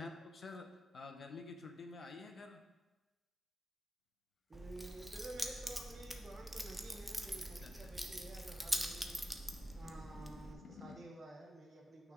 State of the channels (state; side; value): normal; both; correlation 0.90